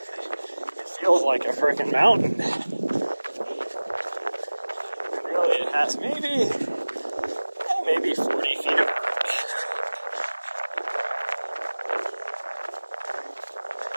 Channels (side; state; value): both; inverted; correlation -1.00